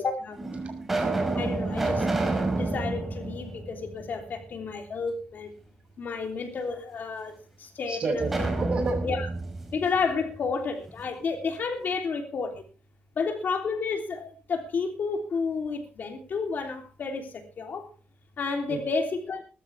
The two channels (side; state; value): both; normal; correlation 0.77